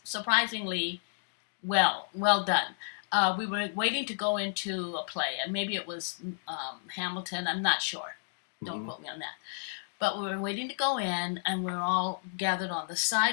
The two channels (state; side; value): silent; right; digital silence